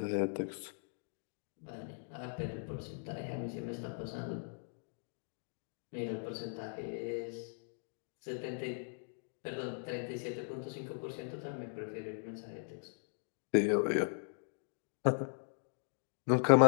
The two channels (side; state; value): right; silent; digital silence